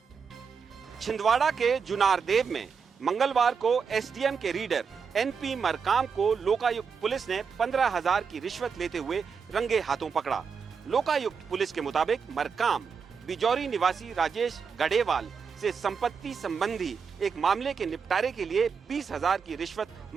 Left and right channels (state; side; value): quieter; left; 6.0 dB